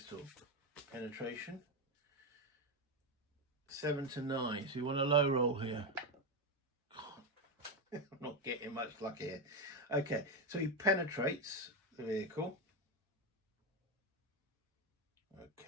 Penetration. 7 to 9. So you want a low roll here. I'm not getting much luck here. Okay, so he penetrates the vehicle.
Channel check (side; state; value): both; normal; correlation 0.09